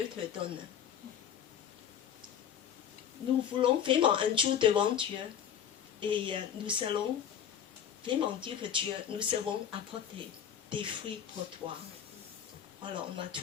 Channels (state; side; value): quieter; right; 9.0 dB